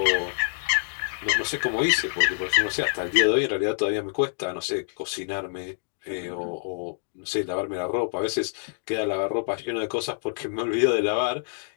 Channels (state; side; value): silent; right; 61 dB below the other